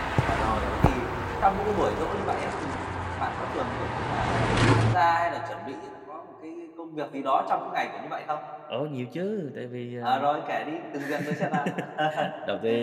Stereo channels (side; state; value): both; identical; correlation 1.00